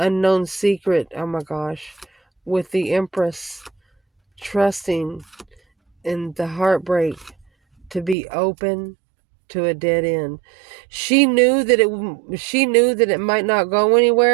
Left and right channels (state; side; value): drops out; left; at 8.2 s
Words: secret. Oh my gosh. With the Empress trusting in the heartbreak to be open to a dead end. She knew that it might not go